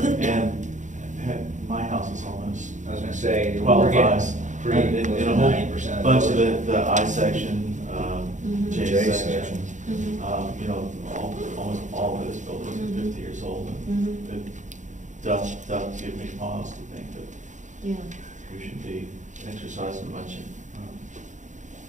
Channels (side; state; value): left; late; 0.36 ms